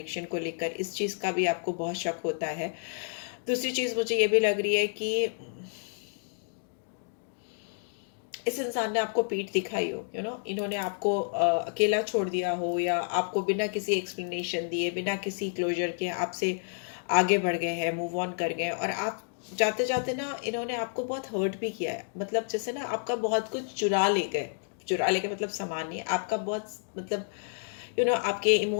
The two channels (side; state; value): right; silent; digital silence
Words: को लेकर, इस चीज़ का भी आपको बहुत शक होता है। दूसरी चीज़ मुझे ये भी लग रही है कि इस इंसान ने आपको पीठ दिखाई हो, इन्होंने आपको अकेला छोड़ दिया हो या आपको बिना किसी एक्सप्लेनेशन दिए, बिना किसी क्लोजर के आपसे आगे बढ़ गए हैं, मूव ऑन कर गए और आप जाते जाते ना इन्होंने आपको बहुत हर्ट भी किया है। मतलब जैसे ना आपका बहुत कुछ चुरा ले गए, मतलब सामान नहीं, आपका बहुत, मतलब आपके